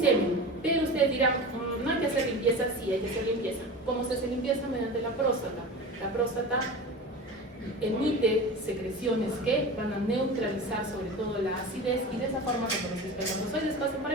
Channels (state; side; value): normal; both; correlation 0.31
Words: Pero ustedes dirán, no hay que hacer limpieza. Sí, hay que hacer limpieza. ¿Cómo se hace limpieza? Mediante la próstata. La próstata emite secreciones que van a neutralizar sobre todo la acidez y de esa forma cuando los espermatozoides pasen por